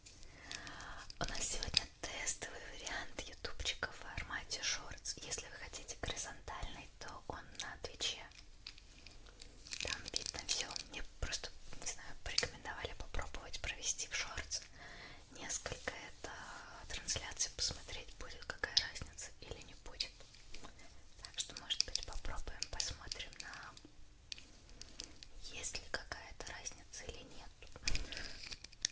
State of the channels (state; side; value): identical; both; correlation 1.00